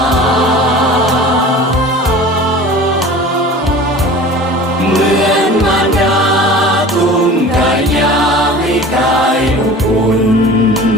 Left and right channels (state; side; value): normal; both; correlation 0.40